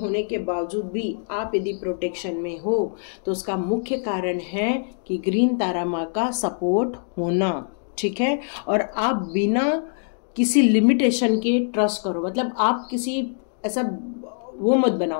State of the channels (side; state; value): right; silent; digital silence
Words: के बावजूद भी आप यदि प्रोटेक्शन में हो तो उसका मुख्य कारण है कि ग्रीन तारा माँ का सपोर्ट होना, ठीक है। और आप बिना किसी लिमिटेशन के ट्रस्ट करो। मतलब आप किसी ऐसा वो मत